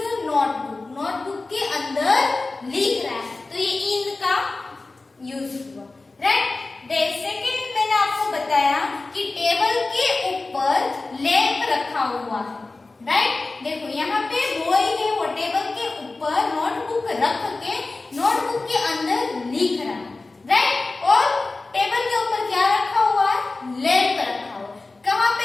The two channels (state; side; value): quieter; right; 3.4 dB